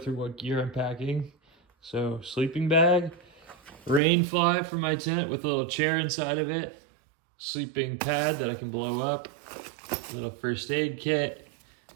what gear I'm packing. So sleeping bag, rain fly for my tent with a little chair inside of it, sleeping pad that I can blow up, little first aid kit,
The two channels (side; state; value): left; drops out; at 4.0 s